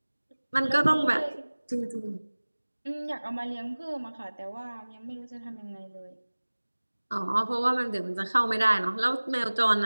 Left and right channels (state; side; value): inverted; both; correlation -1.00